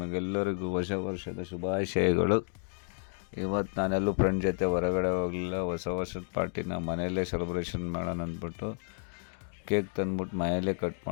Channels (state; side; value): silent; right; 57 dB below the other